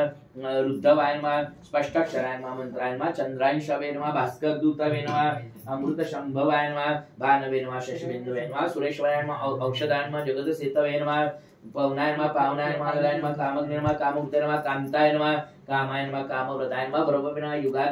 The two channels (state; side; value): identical; both; correlation 1.00